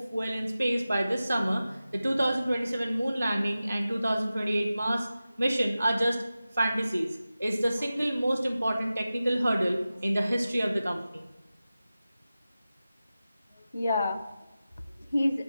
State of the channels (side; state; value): both; inverted; correlation -0.95